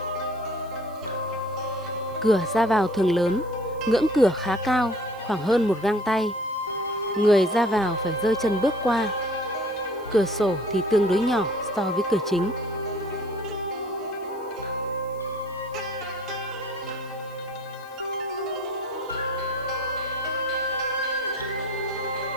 Cửa ra vào thường lớn, ngưỡng cửa khá cao, khoảng hơn một gang tay. Người ra vào phải giơ chân bước qua. Cửa sổ thì tương đối nhỏ so với cửa chính.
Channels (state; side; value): noise; right; hiss, 26 dB below the sound